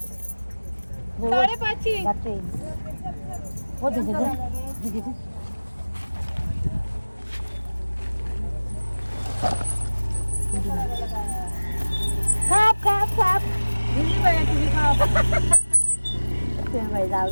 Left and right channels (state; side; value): inverted; both; correlation -1.00